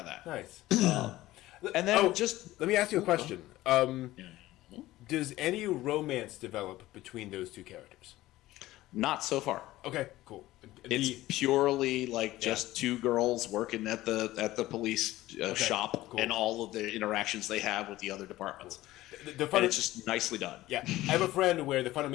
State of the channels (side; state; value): right; quieter; 16.5 dB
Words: that. Nice. And then let me ask you a question. Does any romance develop between those two characters? Not so far. Okay, cool. It's purely like just two girls working at the police shop, and all of the interactions they have with the other departments. And it's just nicely done. Yeah, I have a friend where the